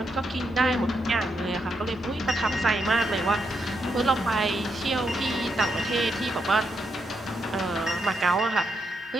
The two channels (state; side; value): normal; both; correlation 0.80